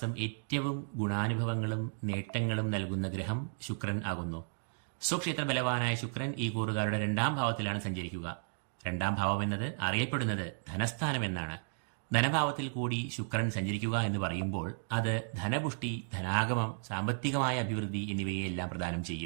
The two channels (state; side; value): silent; left; digital silence